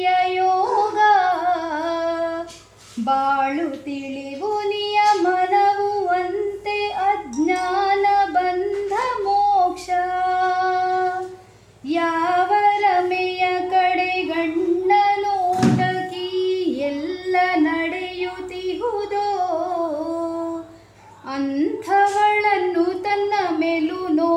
ಯೋಗ ಬಾಳು ತಿಳಿವು ನಿಯಮನವು ಅಂತೆ ಅಜ್ಞಾನ ಬಂಧ ಮೋಕ್ಷ ಯಾವ ರಮೆಯ ಕಡೆ ಗಣ್ಣ ನೋಟಕಿ ಎಲ್ಲ ನಡೆಯುತ್ತಿಹುದೋ ಅಂಥವಳನ್ನು ತನ್ನ ಮೇಲು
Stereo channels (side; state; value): both; identical; correlation 1.00